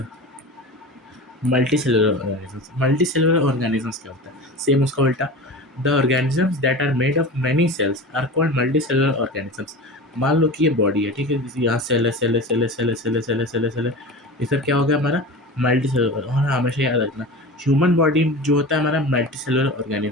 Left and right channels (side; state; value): both; normal; correlation 0.32